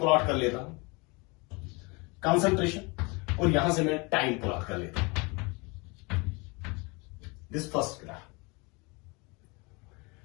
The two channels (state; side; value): quieter; right; 28.2 dB